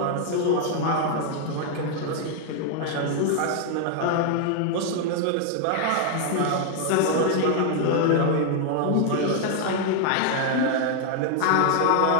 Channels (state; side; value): different; both; correlation 0.00